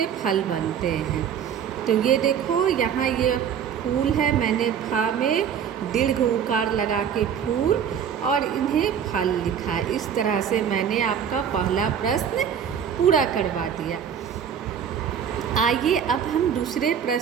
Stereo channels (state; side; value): quieter; left; 8.1 dB